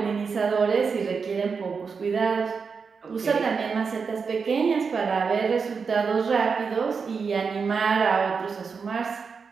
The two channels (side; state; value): left; quieter; 5.4 dB